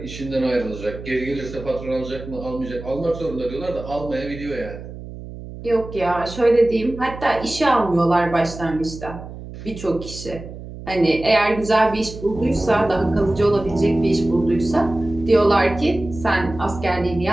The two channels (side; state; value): right; noise; hum, 12 dB below the sound